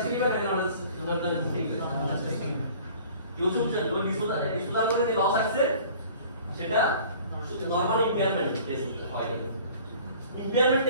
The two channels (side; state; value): both; inverted; correlation -0.49